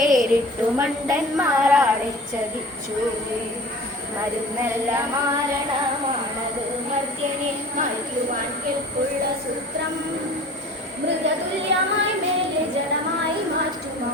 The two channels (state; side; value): normal; both; correlation 0.42